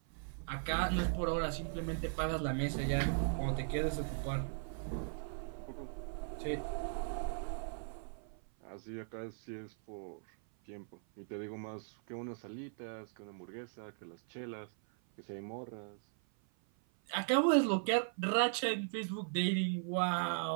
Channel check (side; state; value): left; silent; 52 dB below the other